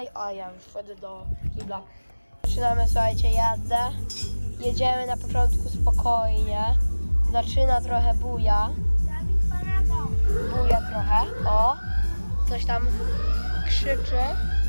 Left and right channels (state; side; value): inverted; both; correlation -1.00